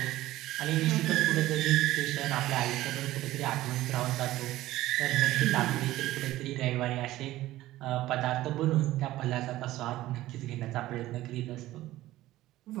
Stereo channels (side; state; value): left; quieter; 15.9 dB